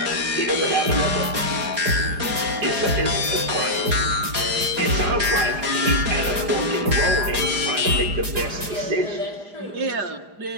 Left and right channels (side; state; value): left; late; 4.9 ms